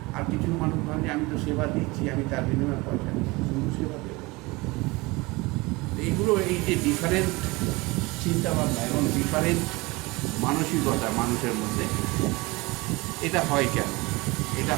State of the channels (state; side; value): quieter; left; 23.6 dB